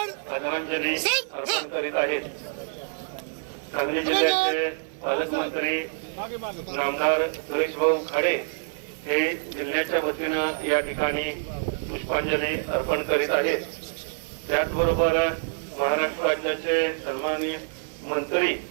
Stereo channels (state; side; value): silent; left; 56 dB below the other